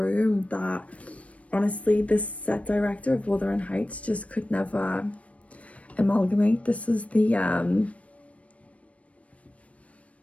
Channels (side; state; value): right; late; 0.065 ms